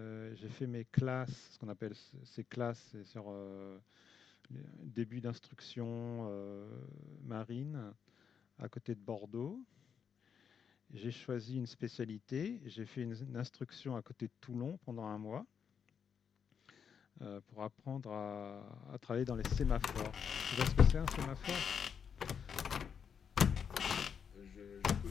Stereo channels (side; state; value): right; quieter; 7.2 dB